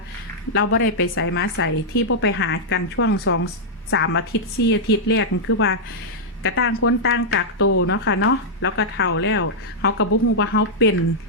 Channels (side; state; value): both; normal; correlation -0.07